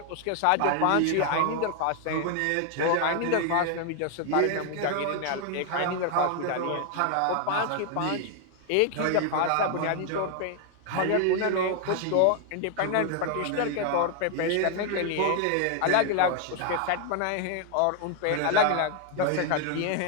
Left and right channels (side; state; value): both; different; correlation 0.00